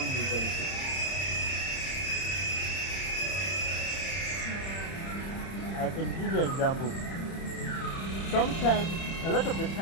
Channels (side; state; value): right; late; 30 ms